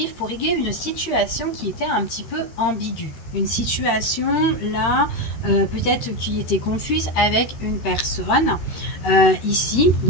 pour régler une situation qui était un petit peu ambiguë. Une situation, là, peut-être qui était confuse avec une personne. Ici,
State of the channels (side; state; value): right; late; 13 ms